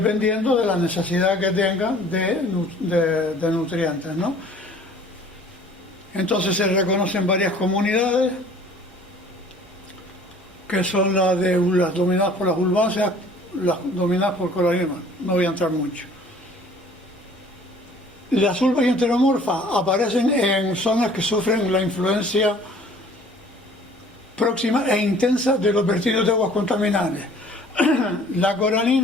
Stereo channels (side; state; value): both; normal; correlation 0.52